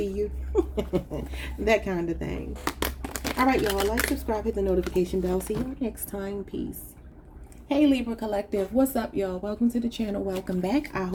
you. That kind of thing. All right, y'all, like, subscribe, hit the notification bell. See you next time. Peace. Hey, Libra Collective. What's up, y'all? Welcome to the channel. Welcome back. I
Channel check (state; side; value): identical; both; correlation 1.00